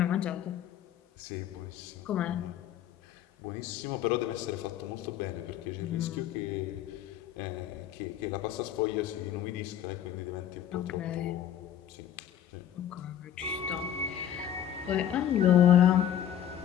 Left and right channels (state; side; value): quieter; right; 10.4 dB